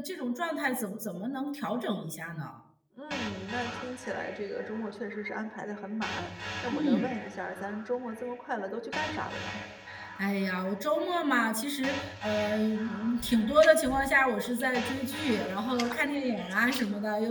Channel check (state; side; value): identical; both; correlation 1.00